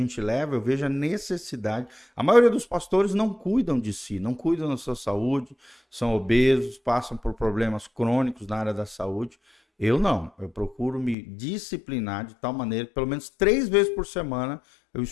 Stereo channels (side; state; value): right; drops out; at 11.2 s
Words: leva, eu vejo a necessidade. A maioria dos pastores não cuidam de si, não cuidam da sua saúde, são obesos, passam por problemas crônicos na área da saúde. Eu não, eu procuro me disciplinar de tal maneira que pelo menos 3 vezes por semana eu